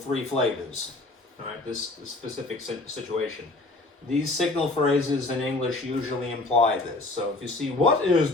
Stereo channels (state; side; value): quieter; right; 3.0 dB